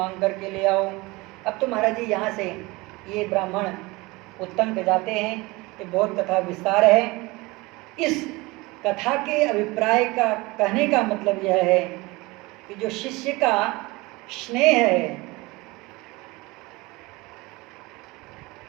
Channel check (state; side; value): quieter; left; 22.9 dB